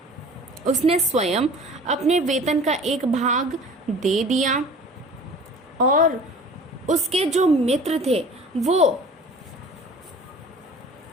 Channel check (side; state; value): both; normal; correlation 0.44